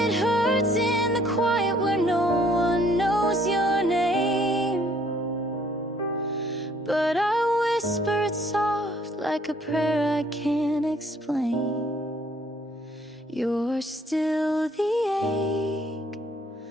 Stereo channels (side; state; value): both; normal; correlation 0.62